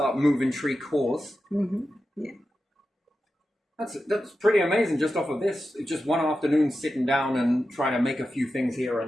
moving tree cores Yeah. That's pretty amazing just off of this. Just one afternoon sitting down and trying to make a few things here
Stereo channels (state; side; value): normal; both; correlation 0.91